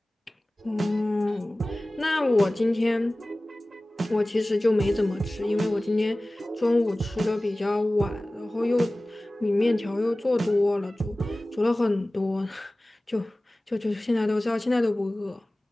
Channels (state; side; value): normal; both; correlation 0.98